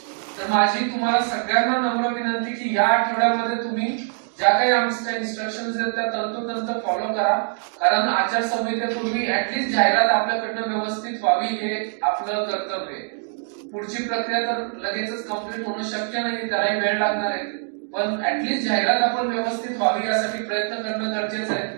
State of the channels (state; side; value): silent; left; 56 dB below the other